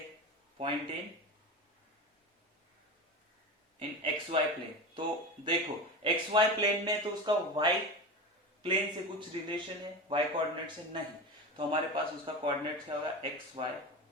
पॉइंट इन xy प्लेन, तो देखो xy प्लेन में तो उसका y प्लेन से कुछ रिलेशन है, y कोऑर्डिनेट से नहीं, तो हमारे पास उसका कोऑर्डिनेट क्या होगा xy,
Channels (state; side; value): normal; both; correlation 0.25